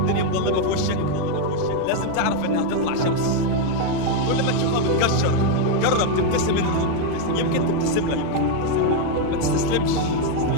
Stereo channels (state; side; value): different; both; correlation 0.01